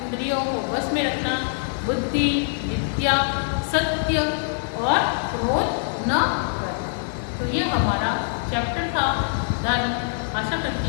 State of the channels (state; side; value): silent; right; digital silence